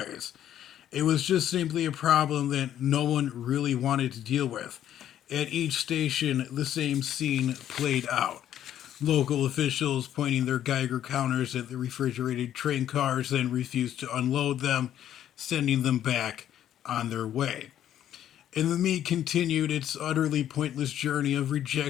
It was just simply a problem that no one really wanted to deal with. At each station, the same scene played out. Local officials pointing their Geiger counters at the refrigerated train cars, then refused to unload them, sending them back on their way. And the meat continued its utterly pointless journey of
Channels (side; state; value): right; quieter; 11.0 dB